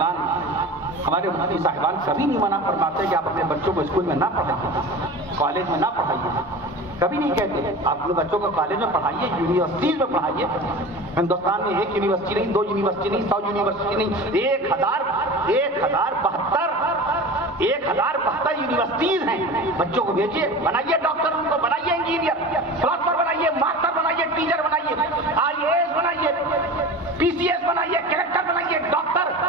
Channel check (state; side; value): normal; both; correlation 0.34